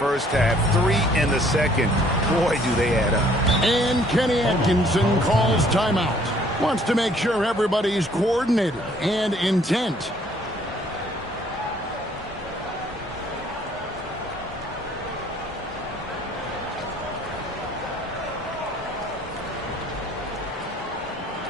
half, 3 in the second. Boy, do they add up. And Kenny Atkinson calls timeout. Wants to make sure everybody's coordinated and intent.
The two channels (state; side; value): normal; both; correlation 0.60